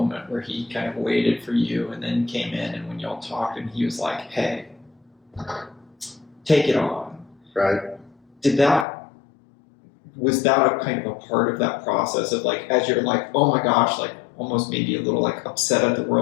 where he kind of waited for you and then came in, and when y'all talked, and he was like, hey, take it on. Right. Was that a kind of a part of that process of like, as you're like, oh my gosh, like almost maybe a little like upset at the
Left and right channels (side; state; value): right; drops out; at 8.8 s